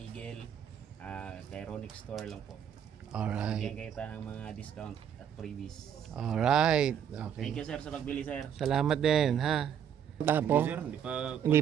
kay Ronic Store lang po. Bigyan Alright. kayo tayo ng mga discount at freebies. Alright. Thank Okay. you, sir, sa pagbili, sir. Salamat din, ha? Tapo? Hindi, sir. Hindi pa. Hindi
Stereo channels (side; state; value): left; quieter; 8.8 dB